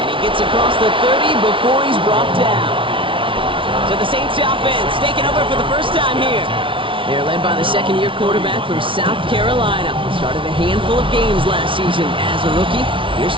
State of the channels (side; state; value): left; late; 0.25 ms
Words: he gets across the 30 before he's brought down. So the Saints offense taking over for the first time here. They're led by the second-year quarterback from South Carolina. Started a handful of games last season as a rookie. Here's